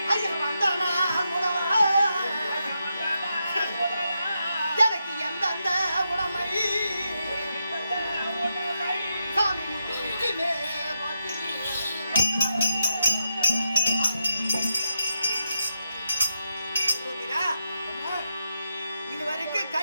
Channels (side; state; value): both; inverted; correlation -0.84